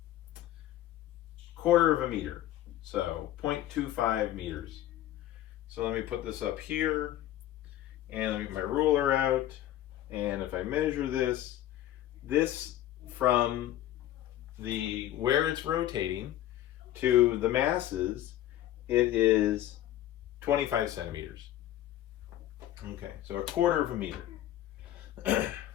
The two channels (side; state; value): right; quieter; 13.2 dB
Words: of a meter, so 0.25 meters. So let me put this up here, and let me get my ruler out, and if I measure this from where it's rotating to the masses, it is 25 centimeters. Okay, so 1/4 of a meter.